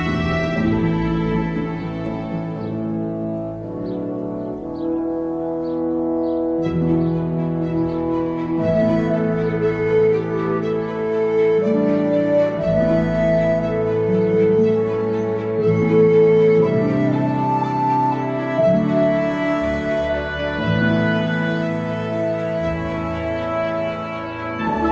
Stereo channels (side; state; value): both; identical; correlation 1.00